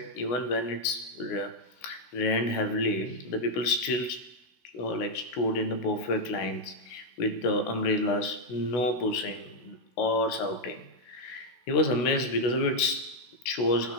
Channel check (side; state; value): right; late; 16 ms